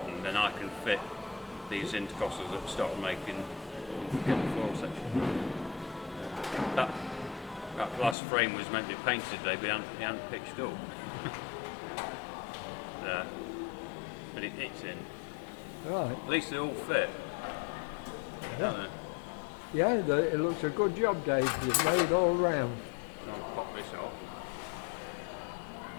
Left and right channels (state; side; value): drops out; right; at 8.2 s